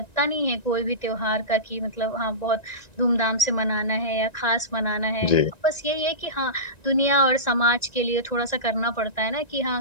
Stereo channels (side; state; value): right; late; 1.9 ms